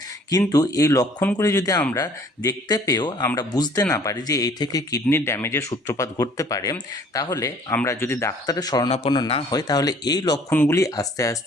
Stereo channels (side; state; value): both; normal; correlation 0.55